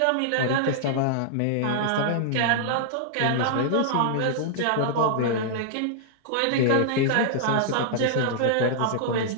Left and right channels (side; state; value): both; different; correlation -0.01